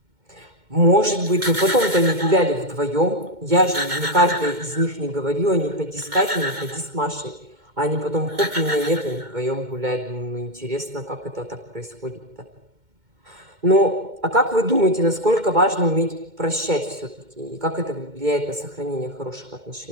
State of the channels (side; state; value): left; late; 2.2 ms